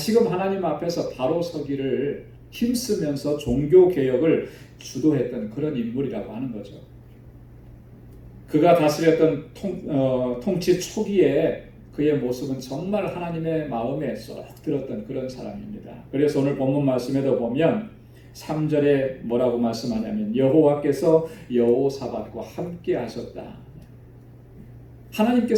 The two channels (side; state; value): both; identical; correlation 1.00